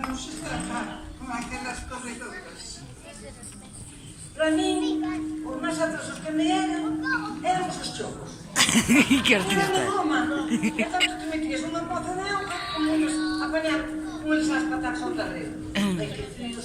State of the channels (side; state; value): both; identical; correlation 1.00